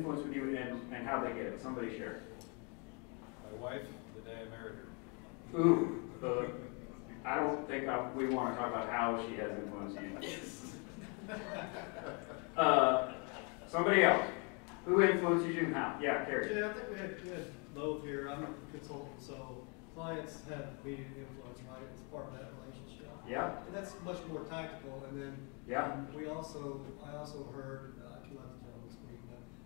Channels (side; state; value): right; quieter; 34.3 dB